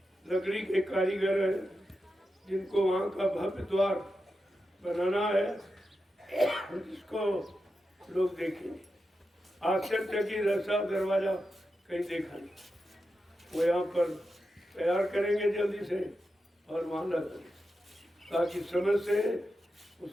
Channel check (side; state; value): both; normal; correlation 0.89